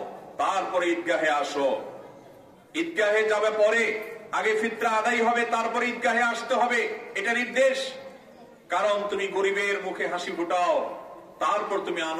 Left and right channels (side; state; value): both; identical; correlation 1.00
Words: তারপরে ঈদগাহে আসো। ঈদগাহে যাবে পরে, আগে ফিতরা আদায় হবে, তারপরে ঈদগাহে আসতে হবে, এটা নির্দেশ। কারণ তুমি গরিবের মুখে হাসি ফুটাও, তারপর তুমি